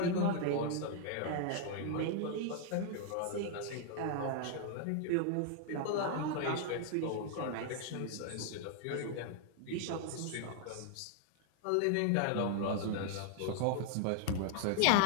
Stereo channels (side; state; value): both; different; correlation 0.00